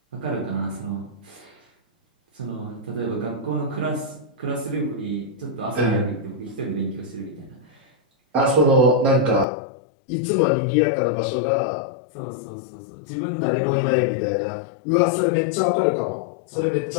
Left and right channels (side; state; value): right; drops out; at 9.5 s